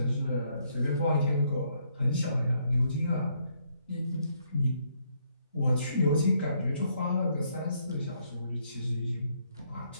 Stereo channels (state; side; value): inverted; both; correlation -0.72